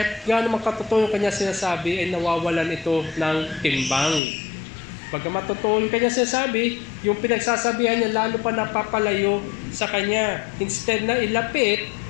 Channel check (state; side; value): drops out; right; at 4.2 s